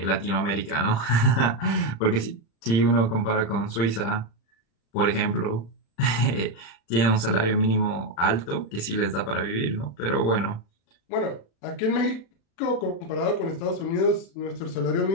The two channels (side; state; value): right; late; 36 ms